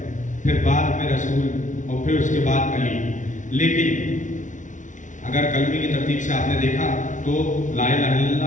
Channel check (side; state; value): right; late; 0.37 ms